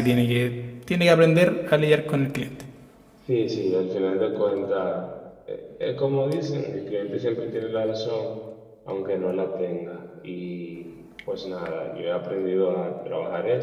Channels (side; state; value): both; identical; correlation 1.00